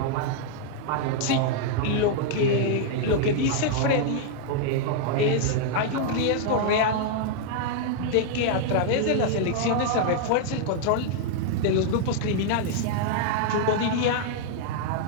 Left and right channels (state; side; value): different; both; correlation -0.01